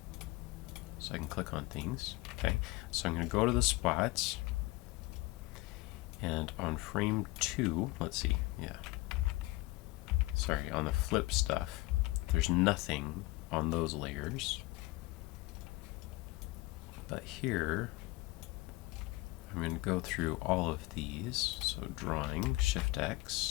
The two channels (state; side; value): quieter; right; 21.4 dB